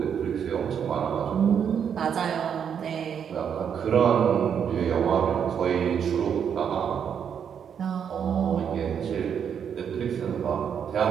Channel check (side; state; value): left; quieter; 7.9 dB